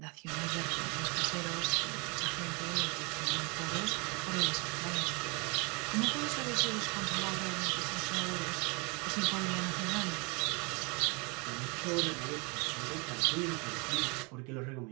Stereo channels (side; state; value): left; quieter; 30.7 dB